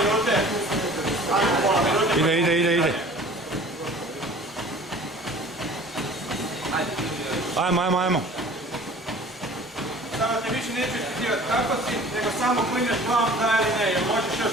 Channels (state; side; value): normal; both; correlation 0.46